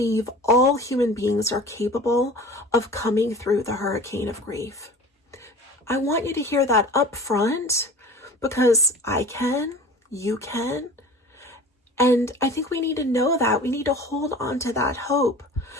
all human beings are capable of coming through the hurricane of grief. I want you to hear that up front because I can, you can. And I think we need to know that. We need to hold on to that hope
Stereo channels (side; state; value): both; normal; correlation 0.40